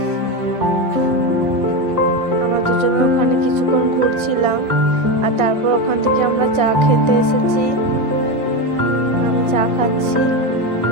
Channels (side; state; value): left; late; 1.5 ms